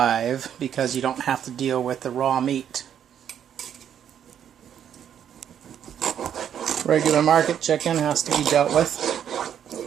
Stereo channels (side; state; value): left; quieter; 9.2 dB